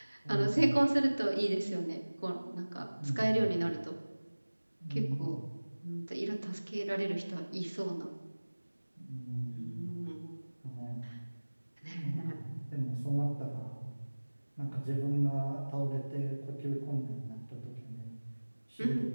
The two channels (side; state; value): both; inverted; correlation -1.00